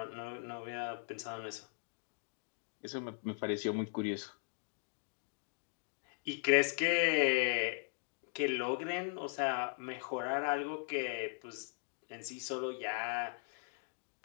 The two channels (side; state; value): right; silent; 52 dB below the other